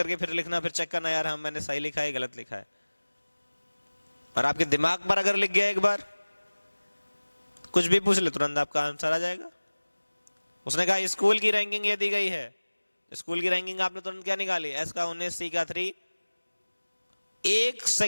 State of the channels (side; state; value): both; inverted; correlation -1.00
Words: फिर लिखना, फिर चेक करना यार हम मैंने सही लिखा है गलत लिखा है। और आपके दिमाग पर अगर लिख गया एक बार, कुछ भी पूछ ले तुरंत आपका आंसर आ जाएगा। उसने कहा स्कूल की रैंकिंग ये दी गई है, स्कूल की रैंकिंग आपने तुरंत क्या निकाली, एस का 19, सी का 3। 1